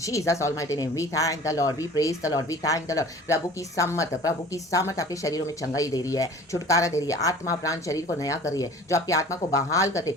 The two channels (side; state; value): both; normal; correlation 0.45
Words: almighty name. We thank the Lord, we praise the Lord, we thank the Lord. प्रभु की सामर्थ आपके शरीरों में चंगाई दे रही है, छुटकारा दे रही है, आत्मा प्राण शरीर को नया कर रही है, जो आपकी आत्मा को बहाल करते,